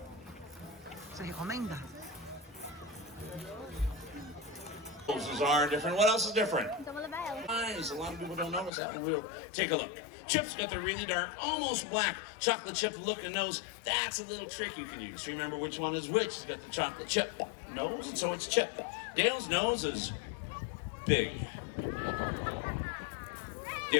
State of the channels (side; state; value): right; drops out; at 8.7 s